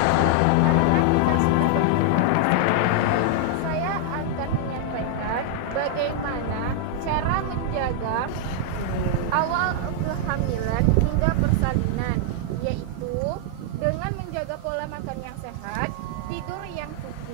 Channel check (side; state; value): both; different; correlation -0.01